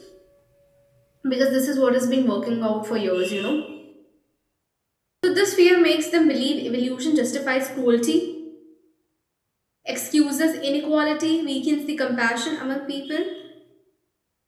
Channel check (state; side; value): identical; both; correlation 1.00